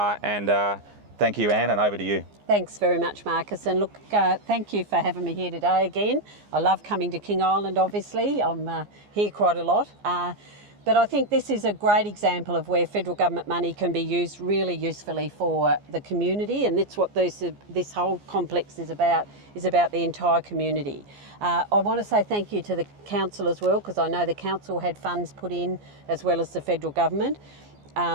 thank you, Anne, and over to you. Thanks very much, Marcus. And look, thank you for having me here today again. I love coming to King Island, obviously. I'm here quite a lot. But I think this is a great example of where federal government money can be used really usefully for the community, and that's what this whole complex is about the entire community. I want to say thank you to the council as well, because I know the council had funds put in as well as the federal government.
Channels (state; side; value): late; left; 14 ms